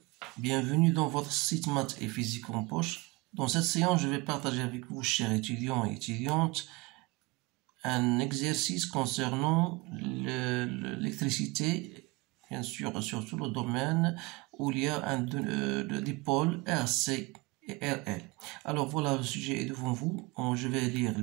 Bienvenue dans votre site Maths et Physique en poche. Dans cette séance, je vais partager avec vous, chers étudiants et étudiantes, un exercice concernant l'électricité, bien sûr, surtout le domaine où il y a des pôles RC et RL. Alors voilà, le sujet est devant vous. Je vais lire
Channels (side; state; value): left; quieter; 24.5 dB